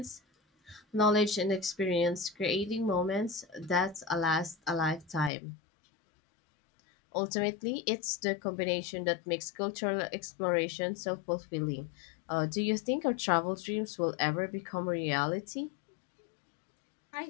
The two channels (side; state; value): right; drops out; at 5.3 s